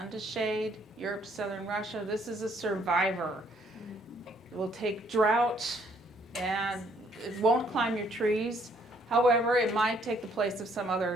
to shade, Europe, southern Russia. This is a survivor. It will take drought and it won't climb your trees. However, it might take the place of some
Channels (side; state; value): both; normal; correlation 0.66